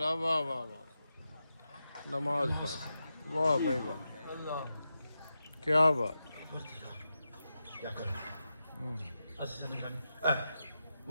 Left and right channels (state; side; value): inverted; both; correlation -0.90